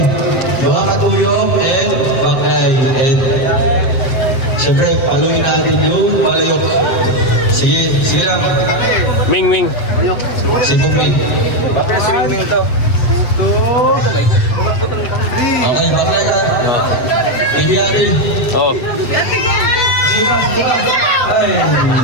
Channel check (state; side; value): late; right; 8.1 ms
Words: buha katuyong and bakay. And siyempre, paluin natin yung palayok. Sige lang. Ming. Sige, Ming. Okay, bakay ka. Ibiari. Oh. Ay.